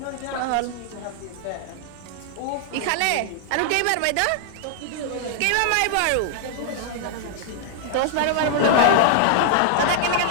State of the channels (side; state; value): both; different; correlation -0.01